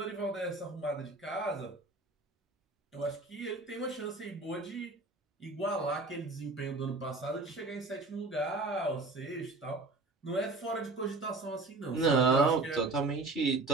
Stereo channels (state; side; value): quieter; left; 3.3 dB